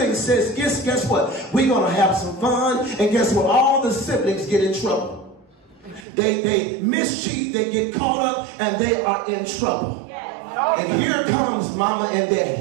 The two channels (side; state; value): left; drops out; at 6.1 s